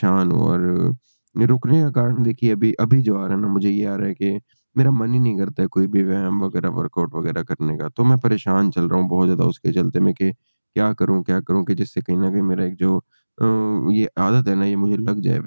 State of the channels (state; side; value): inverted; both; correlation -1.00